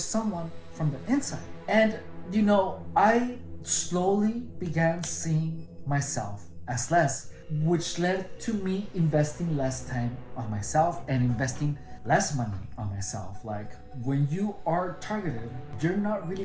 from the inside. And I slowly began seeing myself as less, which led to me investing less time on myself and investing less money on myself. Like, when you are targeted, you're not really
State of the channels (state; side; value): identical; both; correlation 1.00